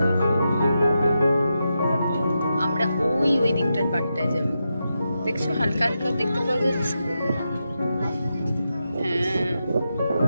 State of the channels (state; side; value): inverted; both; correlation -0.87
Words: আমরা ওই দিকটার পাটটায় যাব, দেখছো? হালকা হালকা দেখতে পাওয়া যাচ্ছে। হ্যাঁ,